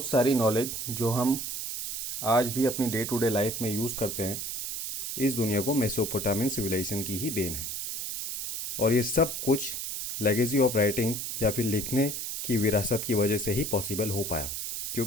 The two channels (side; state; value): right; noise; hiss, 4 dB below the sound